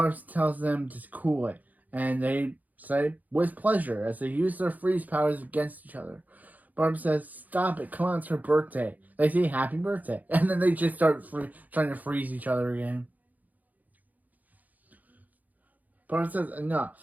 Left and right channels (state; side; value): late; left; 0.080 ms